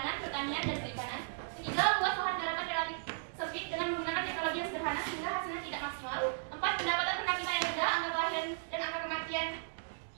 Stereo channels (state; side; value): silent; left; digital silence